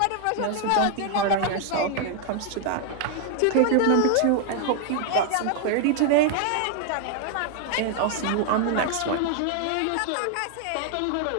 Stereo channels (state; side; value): different; both; correlation 0.00